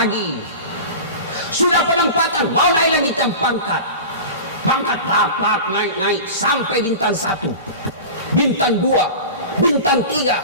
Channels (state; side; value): inverted; both; correlation -0.32